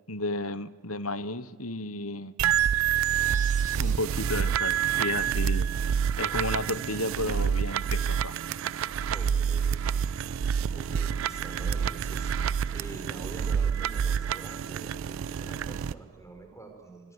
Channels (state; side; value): quieter; left; 6.0 dB